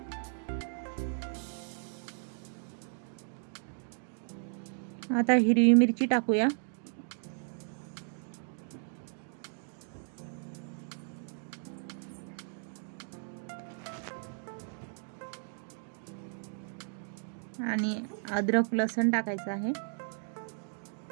आता हिरवी मिरची टाकूया। आणि अद्रक लसूण टाकायचं आहे।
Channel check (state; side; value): silent; left; 55 dB below the other